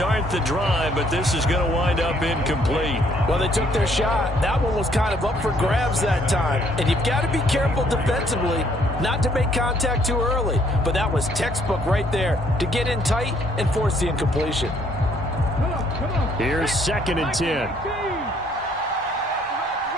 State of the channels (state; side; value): normal; both; correlation 0.65